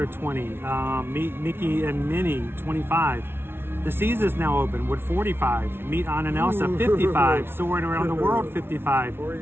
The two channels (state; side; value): late; left; 0.11 ms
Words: 20, Meet Mickey and Minnie 25. The Seas is now open with 45. Meet Anna and Elsa 55. Soaring Around the World 55.